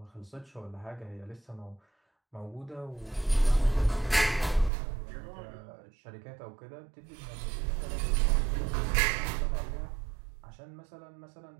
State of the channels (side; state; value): left; drops out; at 4.7 s